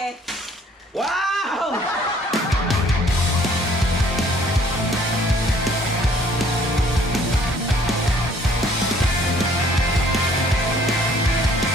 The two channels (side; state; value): both; normal; correlation 0.59